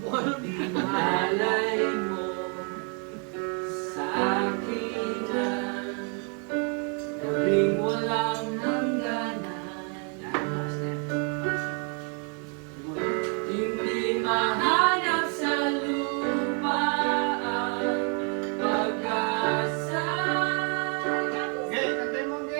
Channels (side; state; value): left; quieter; 39.2 dB